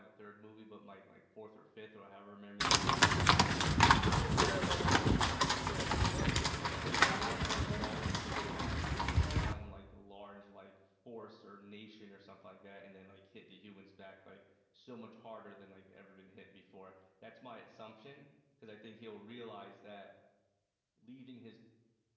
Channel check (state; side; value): identical; both; correlation 1.00